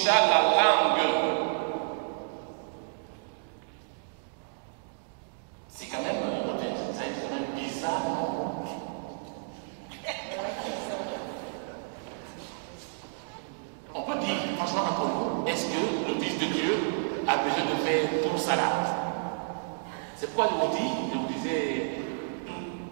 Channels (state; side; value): silent; left; digital silence